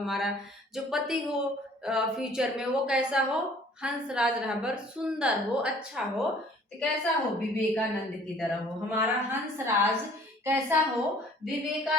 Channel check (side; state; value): both; normal; correlation 0.54